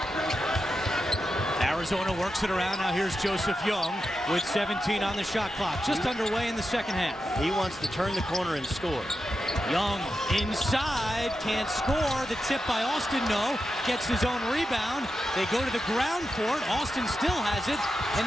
Arizona works it around. Now here's Joseph Young with 17 on the shot clock. Just underway in the second half. He wants to turn the corner and score. Young inside, can't score. The tip by Austin, no. Gets his own rebound. They go to the ground for it. Austin still has it. And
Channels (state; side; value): normal; both; correlation 0.89